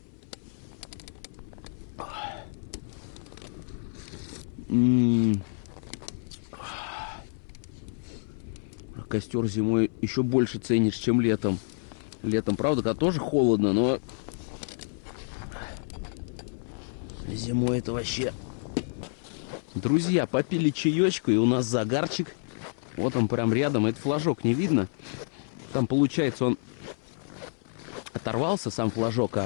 Костер зимой еще больше ценишь, чем летом. Летом, правда, когда тоже холодно, но зимой это вообще... Друзья, попили чаечку, и у нас загарчик. Вот он прям рядом. Это флажок не видно. Там, получается, он оторвался, сам флажок,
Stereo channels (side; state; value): right; silent; 59 dB below the other